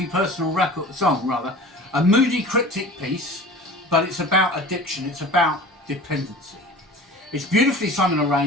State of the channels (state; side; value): normal; both; correlation 0.39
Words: personal song, a moody cryptic piece, but it's about addiction, it's about dependency. It's beautifully sung and